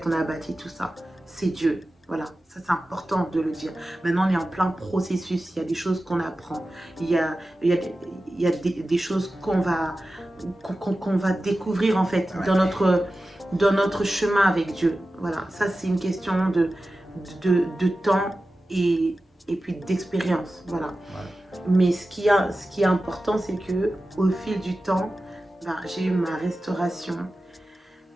on a bâti tout ça. C'est Dieu. Voilà, ça c'est important de le dire. Maintenant, on est en plein processus. Il y a des choses qu'on apprend. Il y a des choses qu'on va découvrir, en fait, Ouais. dans notre chemin avec Dieu. Voilà, ça, c'est une question de temps et puis d'expérience. Voilà. Ouais. Mais ce qui est important, c'est que au fil du temps, ben, j'ai eu ma restauration.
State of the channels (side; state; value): both; normal; correlation 0.94